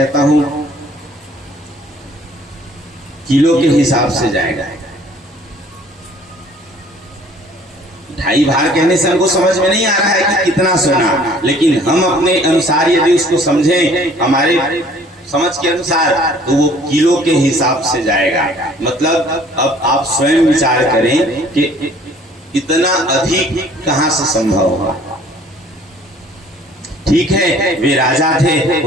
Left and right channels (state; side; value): normal; both; correlation 0.55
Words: हूं किलो के हिसाब से जाएगा। 2.5 भार कहने से हमको समझ में नहीं आ रहा है कि कितना सोना, लेकिन हम अपने अनुसार यदि उसको समझें हमारे समझ के अनुसार तो वो किलो के हिसाब से जाएगा। मतलब अब आप स्वयं विचार करें कि इतना अधिक कहां से संभव होगा। ठीक है वे राजा थे,